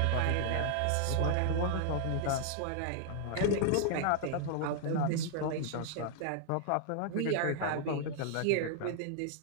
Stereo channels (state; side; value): different; both; correlation -0.01